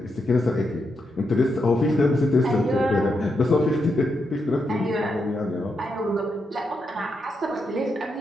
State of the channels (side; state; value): both; normal; correlation 0.83